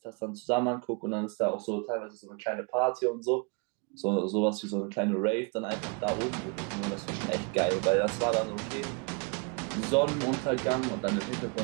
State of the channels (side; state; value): left; quieter; 32.3 dB